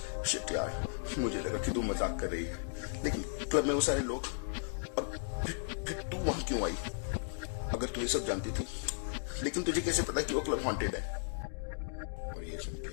शिट यार, मुझे लगा कि तू मजाक कर रही है, लेकिन क्लब में वो सारे लोग, और तू वहां क्यों आई? अगर तू ये सब जानती थी, लेकिन तुझे कैसे पता कि वो क्लब हॉन्टेड है? और ये सुन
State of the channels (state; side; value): silent; right; digital silence